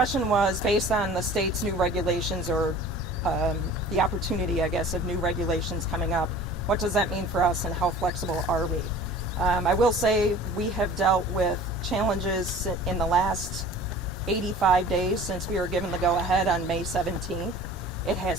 was based on the state's new regulations, or the opportunity, I guess, of new regulations coming up. What does that mean for us and how flexible are we? I will say we have dealt with challenges in the last 85 days since we were given the go-ahead on May 17th. It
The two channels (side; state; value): both; normal; correlation 0.44